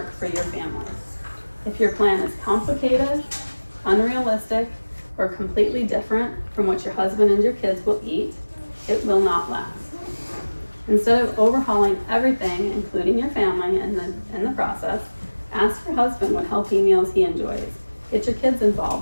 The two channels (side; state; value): both; inverted; correlation -1.00